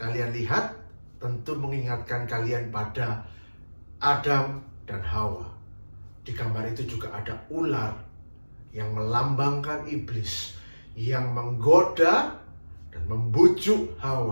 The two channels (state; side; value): inverted; both; correlation -1.00